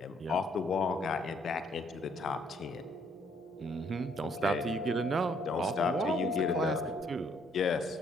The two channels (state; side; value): normal; both; correlation 0.67